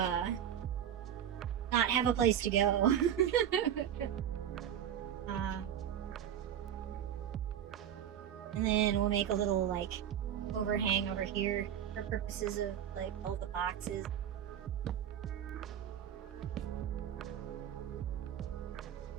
not have a place to go. And then we'll make a little like overhang over here for purposes of like all the boxes.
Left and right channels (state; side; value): quieter; left; 9.8 dB